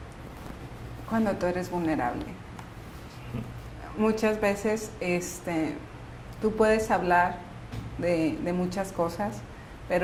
Cuando tú eres vulnerable. Muchas veces tú puedes hablar de muchas cosas,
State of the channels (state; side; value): identical; both; correlation 1.00